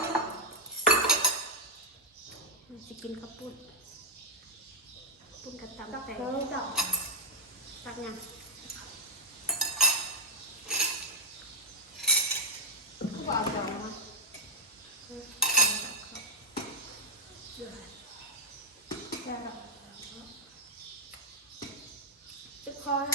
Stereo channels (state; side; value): normal; both; correlation -0.04